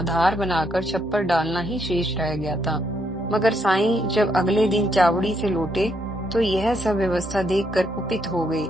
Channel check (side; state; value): both; normal; correlation 0.75